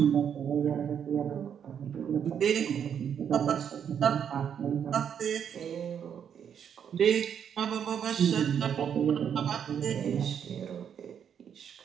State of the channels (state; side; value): quieter; left; 8.2 dB